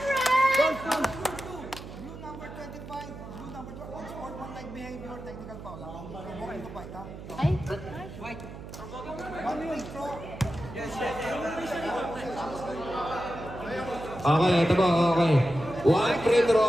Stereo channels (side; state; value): right; noise; hum, 13 dB below the sound